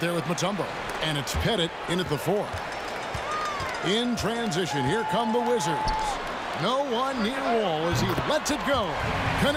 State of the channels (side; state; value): both; identical; correlation 1.00